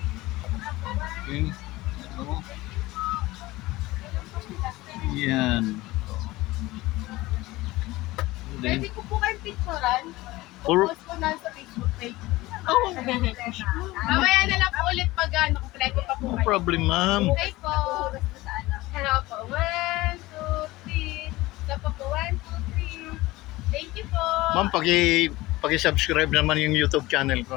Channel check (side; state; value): right; quieter; 19.2 dB